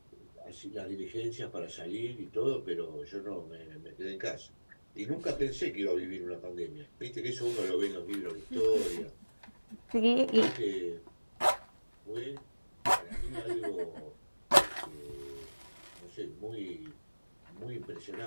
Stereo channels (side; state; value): both; inverted; correlation -1.00